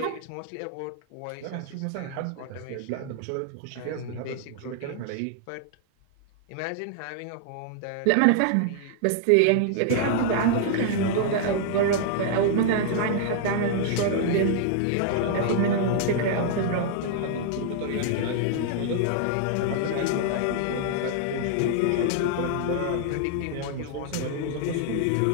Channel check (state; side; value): different; both; correlation -0.01